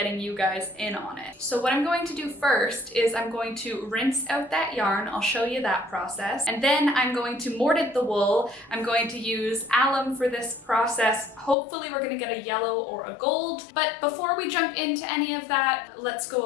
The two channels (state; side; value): drops out; right; at 11.6 s